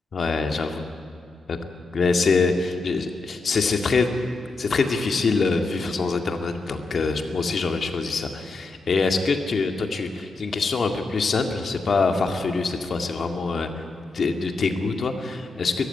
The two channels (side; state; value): right; quieter; 3.7 dB